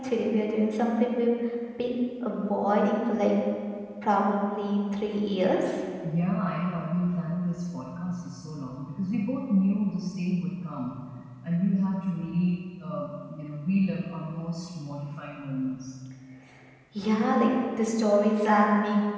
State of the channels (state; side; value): identical; both; correlation 1.00